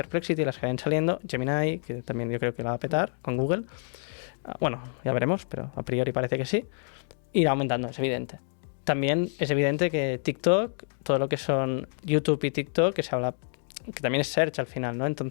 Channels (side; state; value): right; silent; digital silence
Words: las que vayan saliendo, Gemini, que también yo creo que la va a petar con Google. Bueno, ya veremos, pero a priori parece que sí. Irá aumentando, es evidente. También es evidente que TikTok, todo lo que son YouTube y TikTok, que se habla, que también es search al final, ¿no?